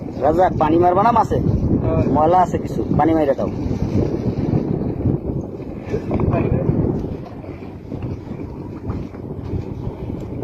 রাজা, পানি মারবা না মাছে? ময়লা আছে কিছু, পানি মাইরে দাও।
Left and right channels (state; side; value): identical; both; correlation 1.00